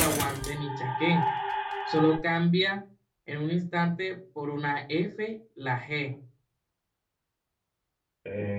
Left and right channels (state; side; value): identical; both; correlation 1.00